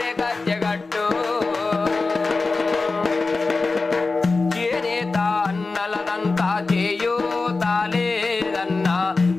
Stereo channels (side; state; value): right; quieter; 3.8 dB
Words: గజ్జగట్టు. చేనేత అన్నలదంతా చేయూతా లేదన్నా,